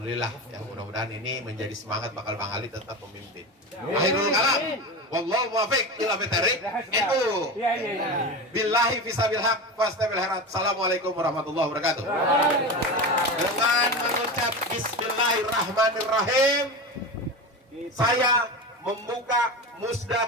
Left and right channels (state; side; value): normal; both; correlation 0.24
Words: Ya mudah-mudahan ini menjadi semangat bakal Bang Ali tetap memimpin. Akhirul kalam. Wallahu muwaffiq ila bitariq. Itu. Billahi fisabil haq fastabil harat. Assalamualaikum warahmatullahi wabarakatuh. Dengan mengucap bismillahirrahmanirrahim, saya membuka musda